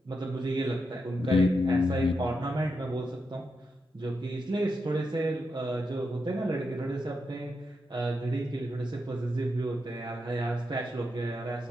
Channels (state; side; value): normal; both; correlation 0.85